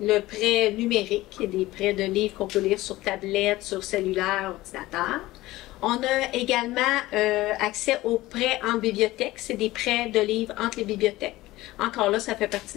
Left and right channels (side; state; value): right; quieter; 17.8 dB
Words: prêt numérique, qui est des prêts de livres qu'on peut lire sur tablette, sur cellulaire, ordinateur. On a également accès aux prêts en bibliothèque. C'est des prêts de livres entre les bibliothèques. Encore là, ça fait partie